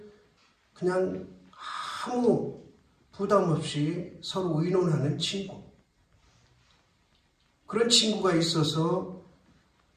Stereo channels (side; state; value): both; identical; correlation 1.00